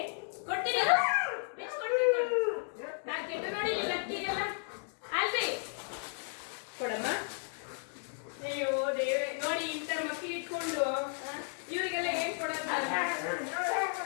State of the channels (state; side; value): silent; right; 55 dB below the other